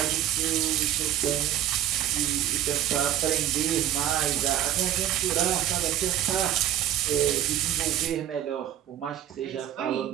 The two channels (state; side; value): quieter; left; 11.6 dB